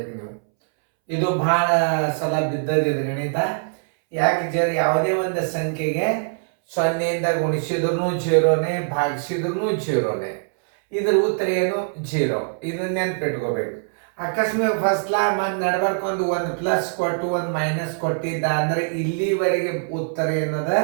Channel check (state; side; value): silent; left; 64 dB below the other